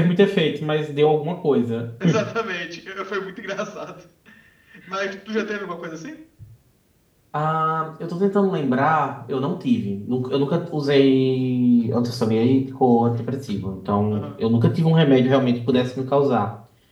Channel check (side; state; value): both; identical; correlation 1.00